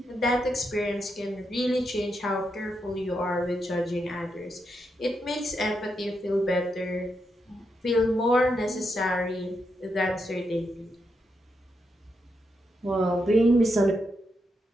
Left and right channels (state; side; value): normal; both; correlation 0.83